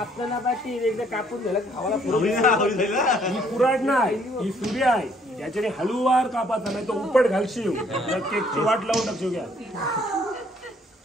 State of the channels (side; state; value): both; normal; correlation 0.64